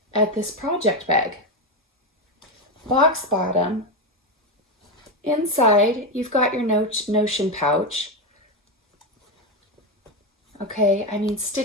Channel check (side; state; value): both; normal; correlation 0.11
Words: at this project bag. Box bottom. Inside, you've got your Notion pouch. Okay, I mean,